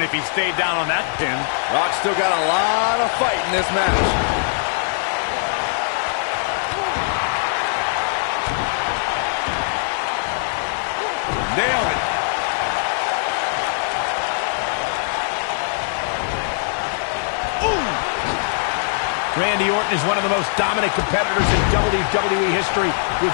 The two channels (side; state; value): right; silent; digital silence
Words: he stayed down on that pin. Rock still got a lot of fight in this match. Nailed it. Ooh! Randy Orton is one of the most dominant competitors in WWE history with